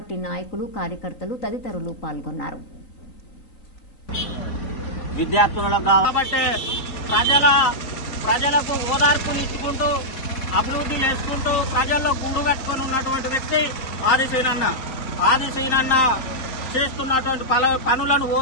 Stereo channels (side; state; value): right; late; 3.9 ms